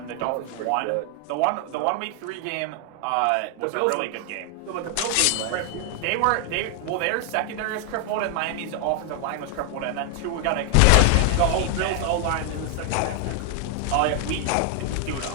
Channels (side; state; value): both; different; correlation 0.00